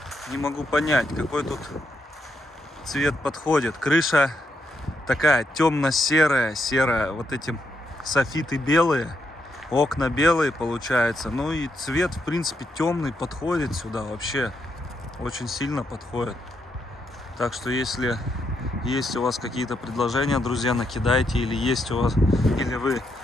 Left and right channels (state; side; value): normal; both; correlation 0.80